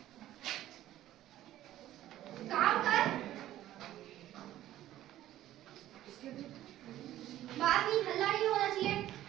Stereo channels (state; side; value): quieter; left; 13.6 dB